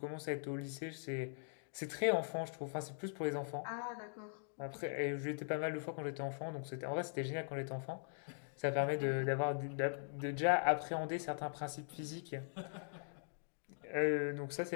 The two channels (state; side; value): silent; right; digital silence